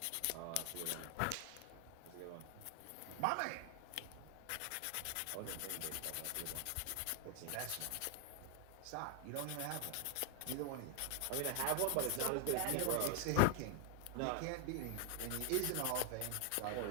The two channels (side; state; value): both; different; correlation 0.00